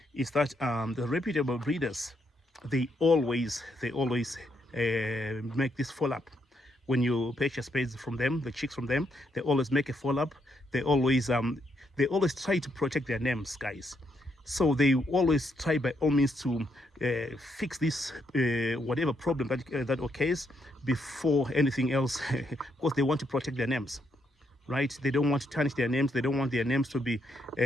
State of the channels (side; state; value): both; normal; correlation 0.77